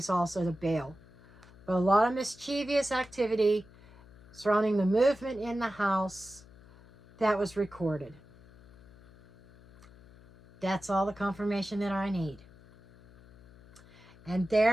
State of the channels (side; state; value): left; noise; hum, 24 dB below the sound